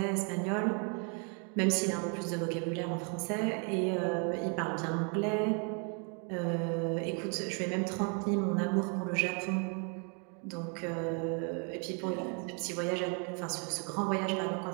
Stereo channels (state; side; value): quieter; left; 37.9 dB